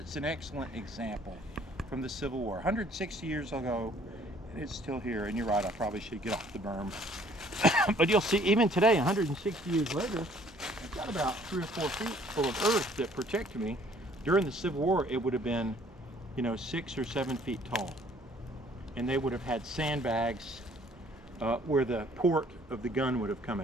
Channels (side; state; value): both; normal; correlation 0.58